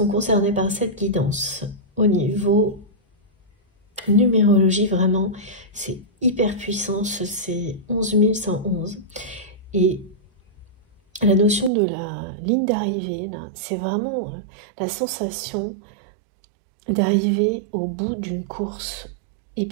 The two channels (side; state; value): left; drops out; at 11.7 s